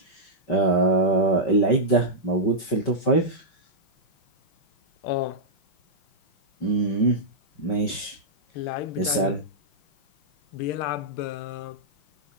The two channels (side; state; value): right; late; 5.3 ms